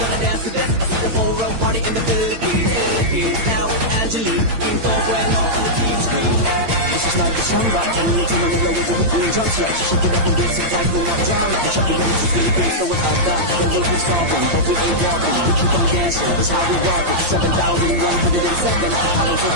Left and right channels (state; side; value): late; left; 8.8 ms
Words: dance to this. I see the whole world party in the Philippines. Now it's Angelique, in full bueno on the TV screen. This is like a samba, and you to Manila with the weekly drums. Yeah, shake it up and dance it like no more drama. And shut the game, it's Philippines, so without that, the world is solving, but we ain't walking. We keep on dancing, that's how we rock it. 7,107 islands of